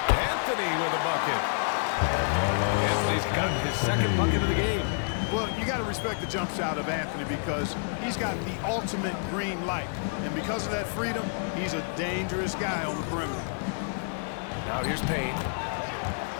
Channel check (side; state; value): right; silent; digital silence